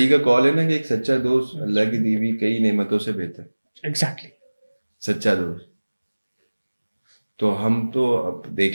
का कॉल है ना कि एक सच्चा दोस्त अल्लाह की दी हुई कई नेमतों से बेहतर। एग्जैक्टली। सच्चा दोस्त। तो हम तो अब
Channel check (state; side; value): inverted; both; correlation -1.00